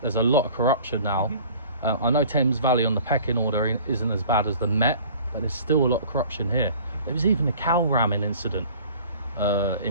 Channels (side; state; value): both; inverted; correlation -0.47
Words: there's a lot of corruption now. I know Thames Valley on the pecking order isn't as bad as the Met, but there's still a lot of corruption here. There was even a cow ramming incident